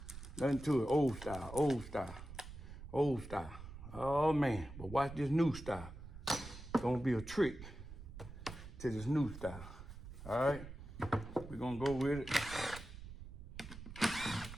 Nothing to it, old style, old style, old style. Oh man, but watch this new style. It's gonna be a trick to this new style. All right, we're gonna go with it.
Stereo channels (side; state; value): right; noise; rumble, 12 dB below the sound